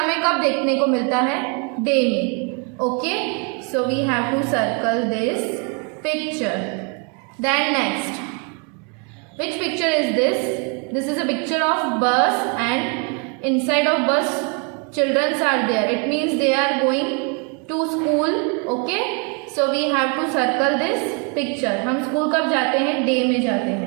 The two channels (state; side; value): quieter; left; 35.6 dB